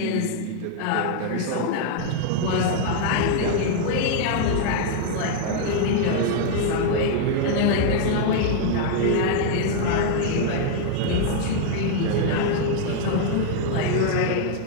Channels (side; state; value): both; different; correlation -0.01